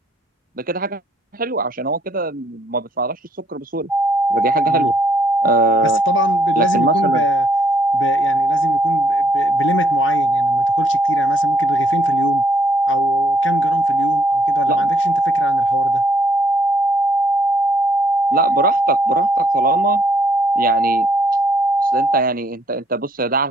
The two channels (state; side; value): normal; both; correlation 0.68